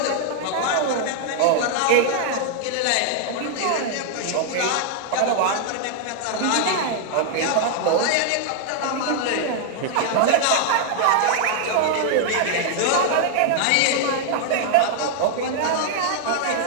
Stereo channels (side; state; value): both; different; correlation -0.01